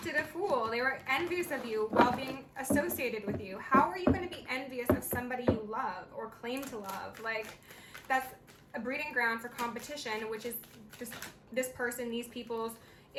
a fool. They were envious of you while being associated with you. How are you going to be envious of somebody you love or claim to love? Like, that's a breeding ground for competition, which is this person, these people's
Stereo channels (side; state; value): both; identical; correlation 1.00